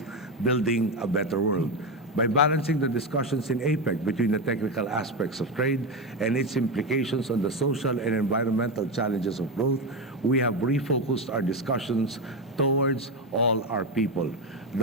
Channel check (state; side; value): normal; both; correlation 0.13